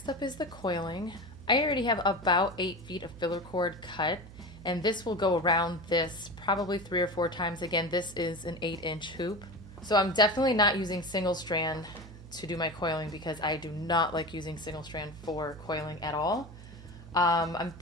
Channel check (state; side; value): noise; right; hum, 17 dB below the sound